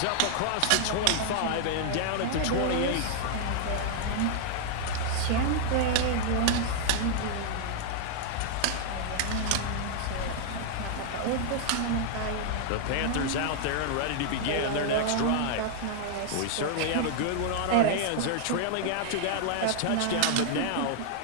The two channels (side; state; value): both; different; correlation -0.01